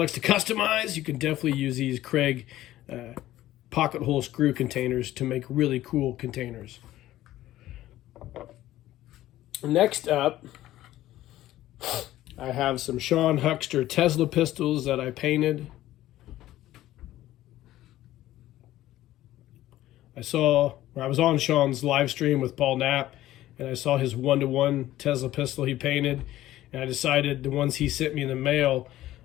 to customize, you can definitely use these Craig pocket hole screw containers to make really cool containers. Next up, I have some Sean Huckster Tesla pistols that I painted. I was on Sean's live stream with Paul Knapp, and I saw his 1-to-1 Tesla pistol he painted, and I decided the ones he sent me in the mail,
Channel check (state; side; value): quieter; right; 14.7 dB